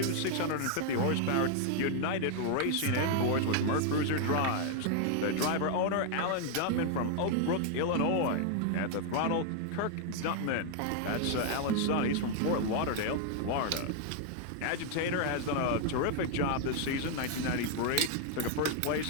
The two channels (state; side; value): different; both; correlation 0.00